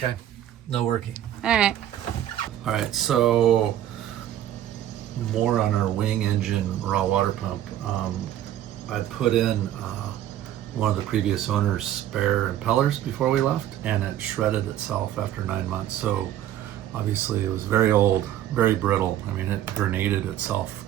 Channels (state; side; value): quieter; left; 11.9 dB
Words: no working. All right. All right, so more on our wing engine raw water pump. I'd put in one of the previous owner's spare impellers before we left, and it shredded itself after 9 months. So obviously it was very old, very brittle. I mean, it grenaded itself